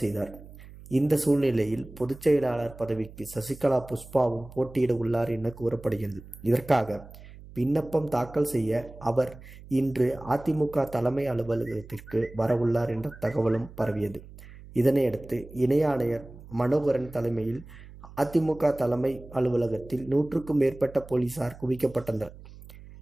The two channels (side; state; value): right; noise; hum, 18 dB below the sound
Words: செய்தார். இந்த சூழ்நிலையில் பொதுச் செயலாளர் பதவிக்கு சசிகலா புஷ்பாவும் போட்டியிட உள்ளார் என கூறப்படுகிறது. இதற்காக விண்ணப்பம் தாக்கல் செய்ய அவர் இன்று அதிமுக தலைமை அலுவலகத்திற்கு வரவுள்ளார் என்ற தகவலும் பரவியது. இதனையடுத்து இணை ஆணையர் மனோகரன் தலைமையில் அதிமுக தலைமை அலுவலகத்தில் 100க்கும் மேற்பட்ட போலீசார் குவிக்கப்பட்டனர்.